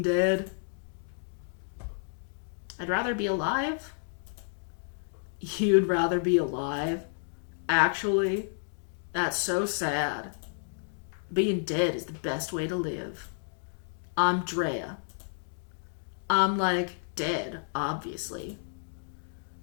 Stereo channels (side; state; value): right; silent; digital silence